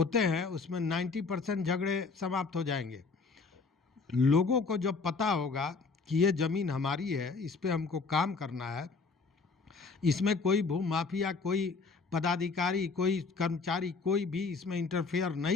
हैं उसमें 90% झगड़े समाप्त हो जाएंगे। लोगों को जब पता होगा कि ये ज़मीन हमारी है, इस पे हमको काम करना है, इसमें कोई भूमाफिया, कोई पदाधिकारी, कोई कर्मचारी, कोई भी इसमें इंटरफेयर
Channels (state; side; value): quieter; right; 4.4 dB